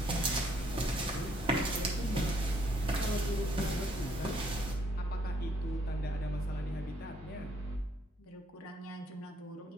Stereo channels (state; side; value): normal; both; correlation 0.68